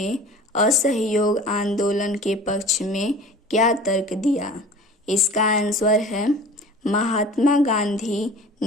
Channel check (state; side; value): normal; both; correlation 0.42